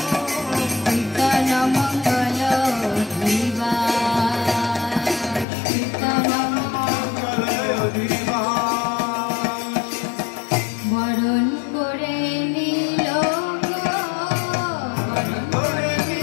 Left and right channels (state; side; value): drops out; right; at 5.5 s